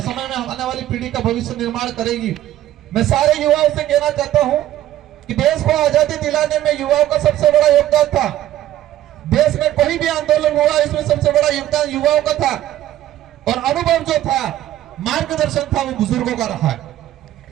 में आने वाली पीढ़ी का भविष्य निर्माण करेगी। मैं सारे युवाओं से कहना चाहता हूं कि देश को आजादी दिलाने में युवाओं का सबसे बड़ा योगदान था। देश में कोई भी आंदोलन हुआ, इसमें सबसे बड़ा योगदान युवाओं का था और अनुभव जो था, मार्गदर्शन था, वो बुजुर्गों का रहा है।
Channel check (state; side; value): quieter; left; 13.3 dB